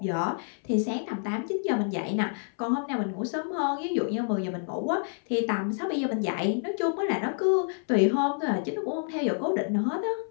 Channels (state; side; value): silent; right; 59 dB below the other